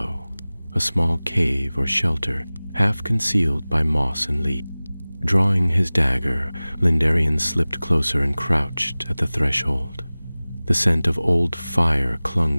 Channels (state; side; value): inverted; both; correlation -0.99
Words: a small cave or shelter, half concealed by moss and leaf. Drawing his dagger, Lendarian slipped closer and crouched at the threshold. The scent of old fire clung